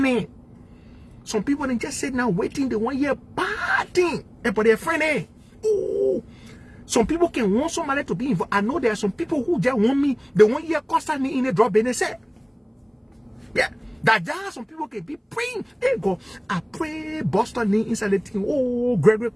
Some people they just sit now waiting, they want to hear bad thing about their friend. Oh, some people can want somebody to be involved. I know there are some people who just want me, they want to hear Costa in a drop in the set. Yeah. That there are some people can be praying. Hey God, I pray Boston inside the thing. Oh, Gregory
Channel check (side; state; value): both; identical; correlation 1.00